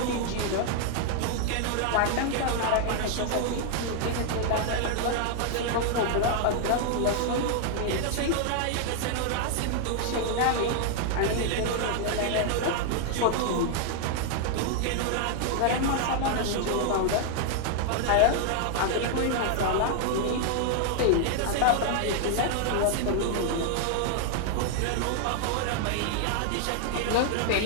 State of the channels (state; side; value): different; both; correlation 0.00